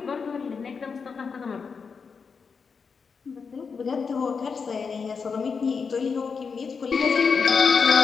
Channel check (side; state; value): right; quieter; 5.5 dB